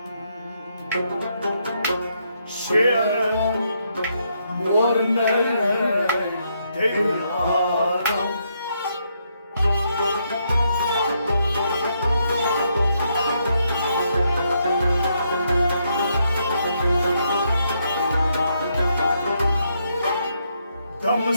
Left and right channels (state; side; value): inverted; both; correlation -0.77